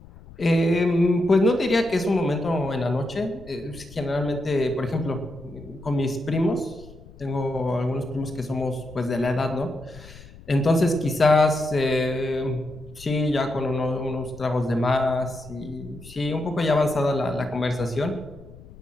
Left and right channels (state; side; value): noise; left; rumble, 19 dB below the sound